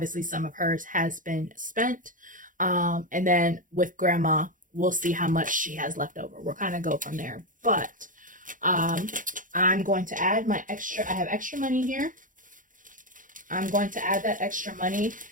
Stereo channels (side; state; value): left; late; 0.38 ms